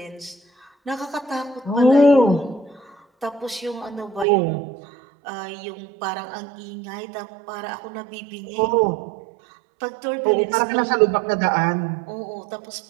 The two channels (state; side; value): drops out; left; at 4.2 s